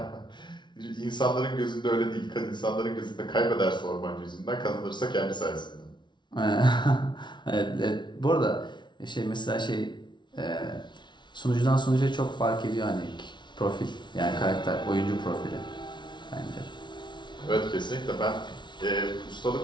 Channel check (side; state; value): right; late; 0.22 ms